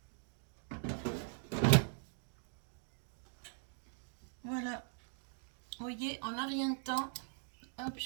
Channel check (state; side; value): silent; left; 50 dB below the other